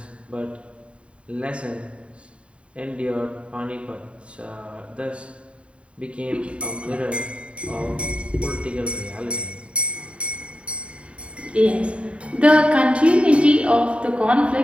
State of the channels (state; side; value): late; left; 0.060 ms